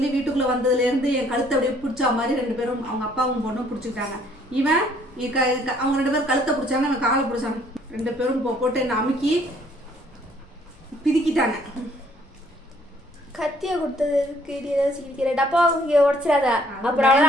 வீட்டுக்குள்ள வந்ததுல இருந்து என் கழுத்தை அப்படியே பிடிச்சா மாதிரி 2 பேரும் அவங்க அப்பாவும் பொண்ணும் பிடிச்சிக்கிட்டாங்க. இவன் அவங்க 2 பேரும் கழுத்தை பிடிச்சாங்க, அவன் காலை பிடிச்சாங்க. 2 பேரும் போட்டு என்ன அமுக்கி பிரிக்கிட்டாங்க. கத்திய கொடுத்தது டப்பா உடைச்சிடாத,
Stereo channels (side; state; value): both; normal; correlation 0.62